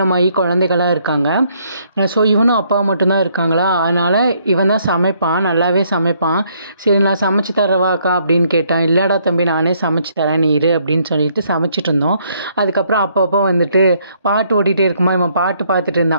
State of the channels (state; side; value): inverted; both; correlation -0.69